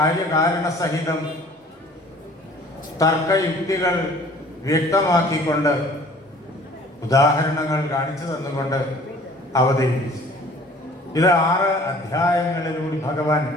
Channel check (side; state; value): both; normal; correlation 0.51